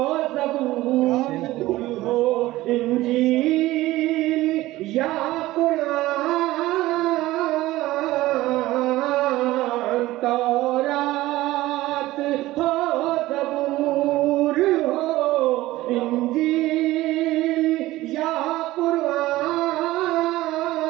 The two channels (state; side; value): quieter; left; 17.2 dB